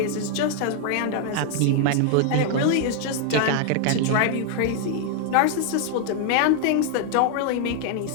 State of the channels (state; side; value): different; both; correlation 0.00